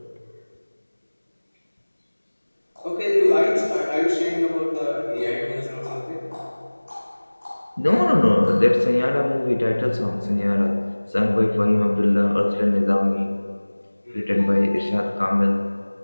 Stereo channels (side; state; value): both; inverted; correlation -1.00